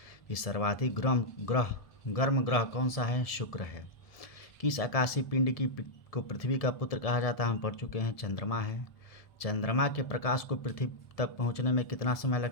कि सर्वाधिक गर्म ग्रह कौन सा है, शुक्र है। किस आकाशीय पिंड को पृथ्वी का पुत्र कहा जाता है, हम पढ़ चुके हैं, चंद्रमा है। चंद्रमा के प्रकाश को पृथ्वी तक पहुंचने में कितना समय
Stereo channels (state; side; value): late; right; 1.7 ms